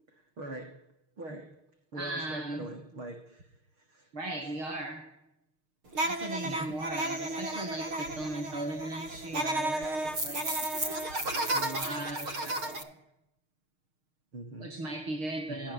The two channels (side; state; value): left; late; 6.5 ms